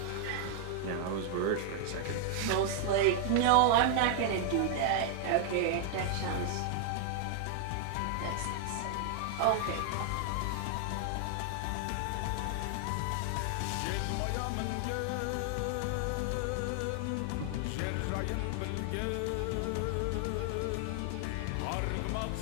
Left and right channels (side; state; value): both; different; correlation 0.00